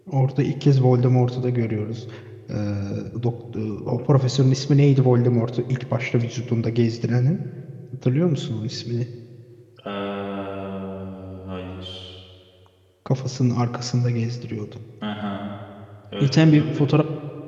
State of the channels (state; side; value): identical; both; correlation 1.00